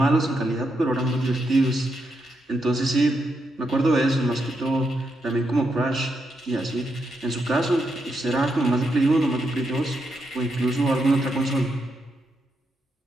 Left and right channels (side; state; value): both; normal; correlation 0.82